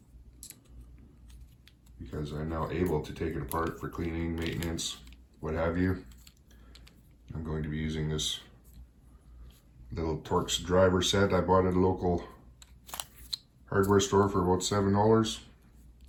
because I'm now able to take it apart for cleaning, maintenance, what have you. I'm going to be using this little Torx driver set I bought at a local hardware store for about $7.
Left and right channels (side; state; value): both; identical; correlation 1.00